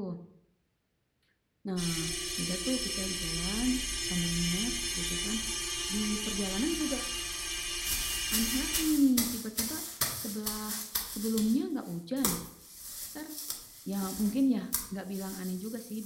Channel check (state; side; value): identical; both; correlation 1.00